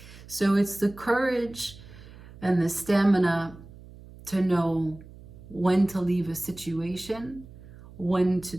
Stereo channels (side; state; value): right; noise; hum, 19 dB below the sound